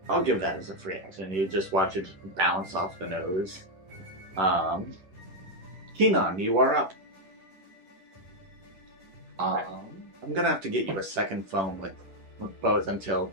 I'll give that as a free action. You just watch it bounce off the nose. Keenan, you are up. I'm gonna have to get you a second phone with both until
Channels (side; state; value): left; late; 10 ms